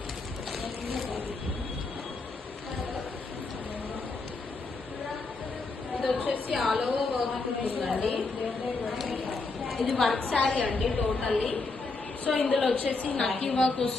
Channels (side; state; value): right; quieter; 3.7 dB